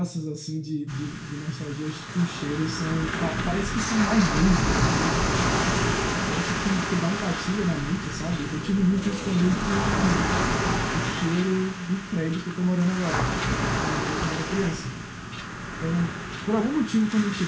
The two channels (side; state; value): both; identical; correlation 1.00